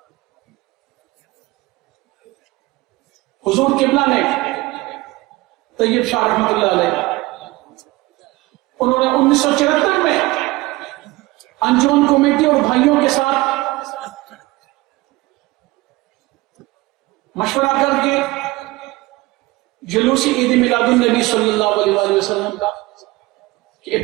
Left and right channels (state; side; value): quieter; left; 20.6 dB